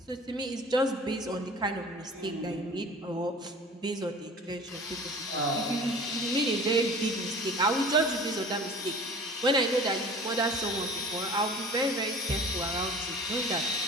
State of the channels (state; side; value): normal; both; correlation 0.42